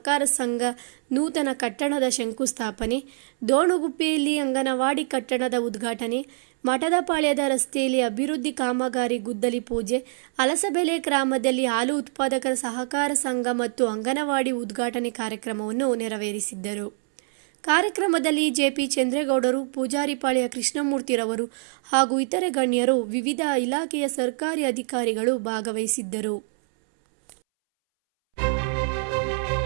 ಸಂಘ ನೂತನ ಕಟ್ಟಡದ ಶಂಕುಸ್ಥಾಪನೆ, ದೋಣುಗುಪ್ಪೆಯಲ್ಲಿ ಅಂಗನವಾಡಿ ಕಟ್ಟಡದ ಉದ್ಘಾಟನೆ, ಮಠದಪಾಳ್ಯದ ರಸ್ತೆಯಲ್ಲಿ ಅಭಿವೃದ್ಧಿ ಕಾಮಗಾರಿ ಗುದ್ದಲಿ ಪೂಜೆ, ಅಲಸಬೆಲೆ ಗ್ರಾಮದಲ್ಲಿ ಹಾಲು ಉತ್ಪಾದಕರ ಸಹಕಾರ ಸಂಘ ಮತ್ತು ಅಂಗನವಾಡಿ ಉದ್ಘಾಟನೆ ಕಾರ್ಯಕ್ರಮವನ್ನು ನೆರವೇರಿಸಿದ್ದರು. ಕಾರ್ಯಕ್ರಮದಲ್ಲಿ ಜೆಪಿ ಚಂದ್ರೇಗೌಡರು, ಪೂಜಾರಿಪಾಳ್ಯ ಕೃಷ್ಣಮೂರ್ತಿರವರು ಹಾಗೂ ಇತರೆ ಗಣ್ಯರು, ವಿವಿಧ ಇಲಾಖೆಯ ಸರ್ಕಾರಿ ಅಧಿಕಾರಿಗಳು ಭಾಗವಹಿಸಿದ್ದರು.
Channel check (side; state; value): left; silent; 62 dB below the other